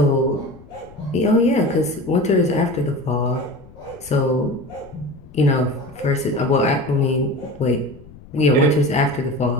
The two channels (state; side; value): noise; left; rumble, 21 dB below the sound